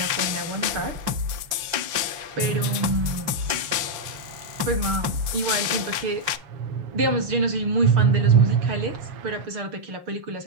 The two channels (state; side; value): late; left; 5.8 ms